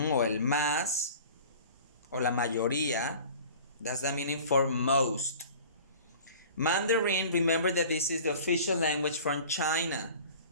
el más, o la mayoría. That's the meaning for most. Mandarin, remember that this is the official language from China.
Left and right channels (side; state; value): both; inverted; correlation -0.43